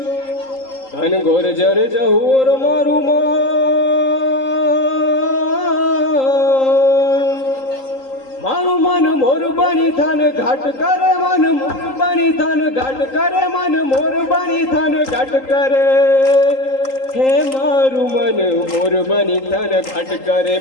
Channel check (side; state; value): right; late; 3.8 ms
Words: ઘન ઘોર જરે જહોર મારું મન, મારું મન મોર બની થન ઘાટ કરે, મન મોર બની થન ઘાટ કરે, મન મોર બની થન ઘાટ કરે, હે મારું મન મોર બની થન ઘાટ કરે,